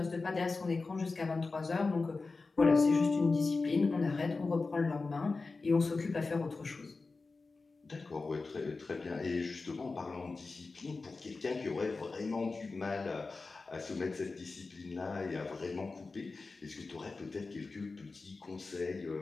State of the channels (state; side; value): quieter; right; 3.9 dB